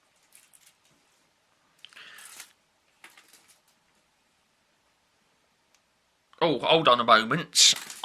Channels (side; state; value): both; identical; correlation 1.00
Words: Oh, hold on a moment.